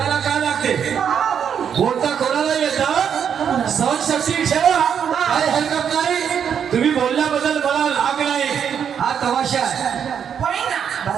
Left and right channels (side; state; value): left; quieter; 8.0 dB